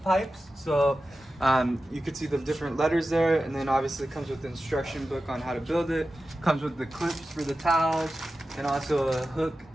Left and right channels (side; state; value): both; normal; correlation 0.93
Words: So you can see the different letters there, and then obviously it comes with the instruction book on how to build it. Comes with the clips for the towels and also a hook